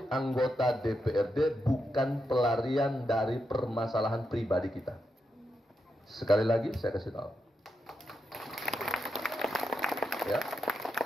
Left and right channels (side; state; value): both; normal; correlation 0.84